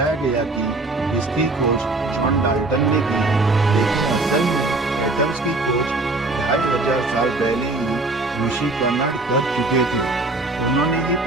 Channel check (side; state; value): left; quieter; 3.1 dB